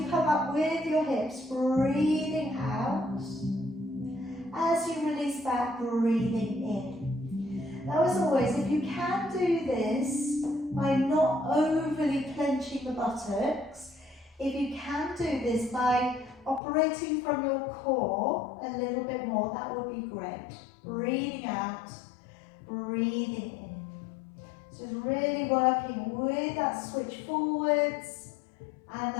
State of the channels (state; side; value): drops out; right; at 16.6 s